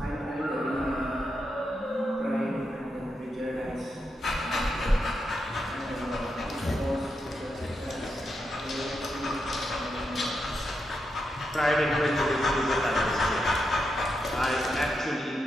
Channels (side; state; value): both; normal; correlation 0.85